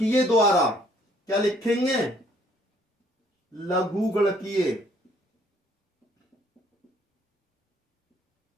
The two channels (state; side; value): normal; both; correlation 0.63